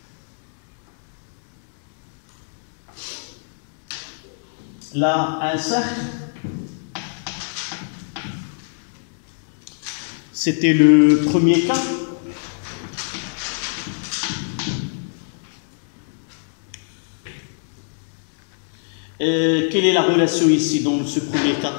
là, un cercle, c'était le premier cas. Quelle est la relation ici dans ce premier cas?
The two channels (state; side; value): silent; right; 62 dB below the other